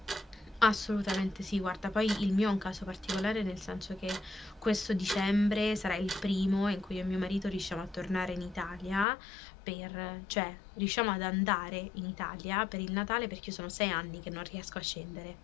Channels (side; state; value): right; drops out; at 9.1 s